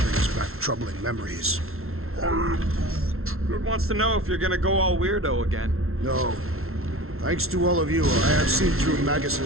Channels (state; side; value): late; left; 0.62 ms